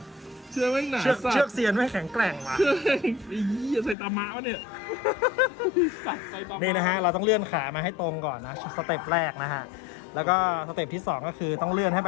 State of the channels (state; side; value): drops out; right; at 4.0 s